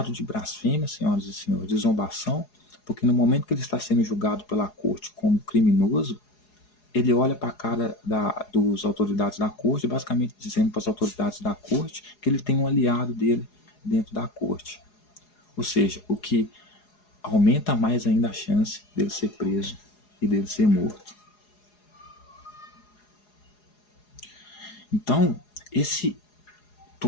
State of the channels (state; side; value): late; right; 4.8 ms